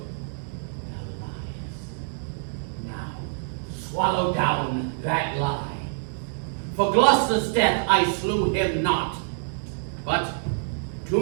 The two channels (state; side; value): silent; left; digital silence